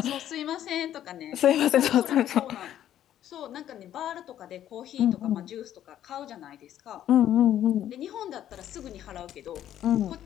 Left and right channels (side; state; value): right; quieter; 11.4 dB